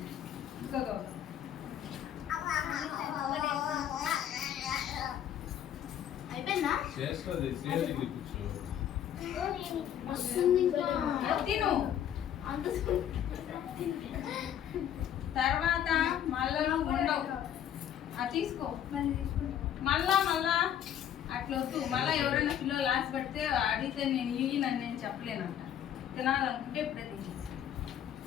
ఇంకో గౌతమ్. అయిపోయిందా? చేస్తుంది శ్రేయ దగ్గర కూర్చో వస్తుంది ఇంకా. అది తిను. అంత తర్వాత మళ్ళా నువ్వు ఉండవు. అది తీసుకో. మళ్ళా అట్లా వద్దు. మళ్ళా ఎవరైనా పిల్లలు లాస్ట్ పెడితే అడిగితే నేను ఇయ్యనని నేను చెప్పలేనంట. తినాలనుకుంటే ఇప్పుడే తినేసి.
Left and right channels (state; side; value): quieter; right; 10.1 dB